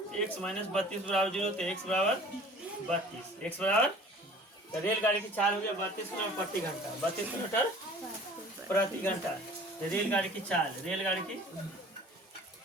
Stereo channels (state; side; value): normal; both; correlation 0.47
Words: एक्स माइनस 32 बराबर 0, तो एक्स बराबर 32, एक्स बराबर तो रेलगाड़ी की चाल हो गया 32 किलोमीटर प्रति घंटा, 32 किलोमीटर प्रति घंटा। तो रेलगाड़ी की चाल, रेलगाड़ी की